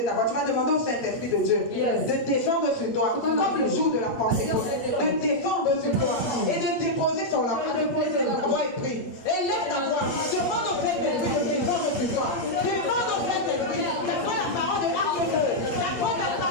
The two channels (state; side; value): late; right; 8.5 ms